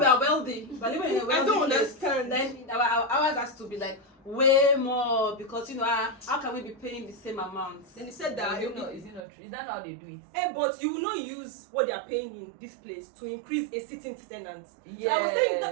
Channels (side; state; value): left; drops out; at 9.2 s